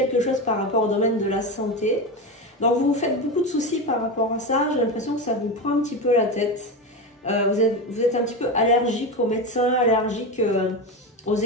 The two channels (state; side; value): normal; both; correlation 0.18